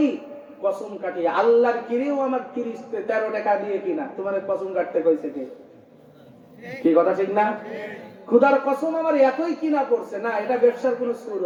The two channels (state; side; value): identical; both; correlation 1.00